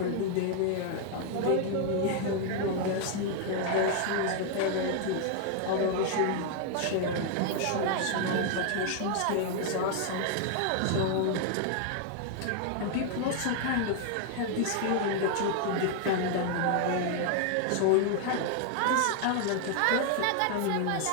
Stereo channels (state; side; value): different; both; correlation 0.00